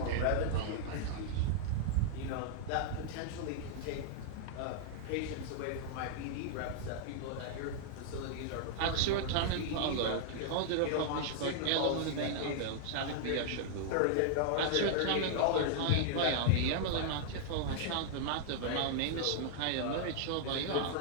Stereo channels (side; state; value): both; different; correlation -0.01